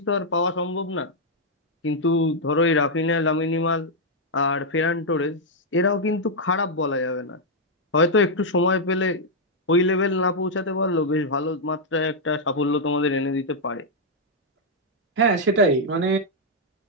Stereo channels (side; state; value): both; normal; correlation -0.04